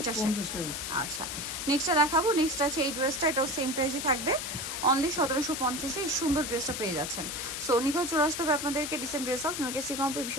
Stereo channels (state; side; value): noise; left; hiss, 5 dB below the sound